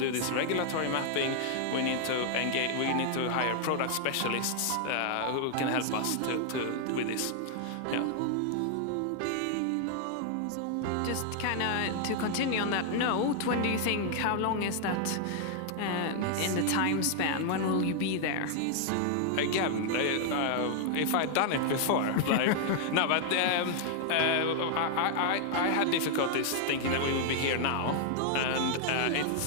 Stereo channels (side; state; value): both; different; correlation -0.01